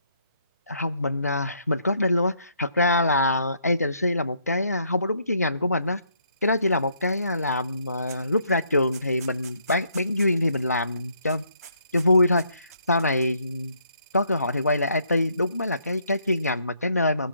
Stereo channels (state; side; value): inverted; both; correlation -0.70